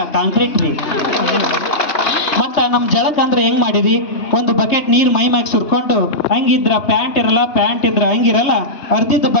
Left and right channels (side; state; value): right; late; 3.2 ms